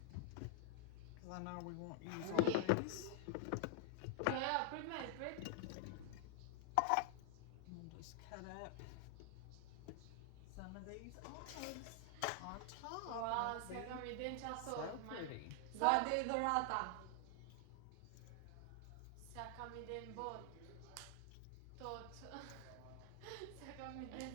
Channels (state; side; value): different; both; correlation 0.00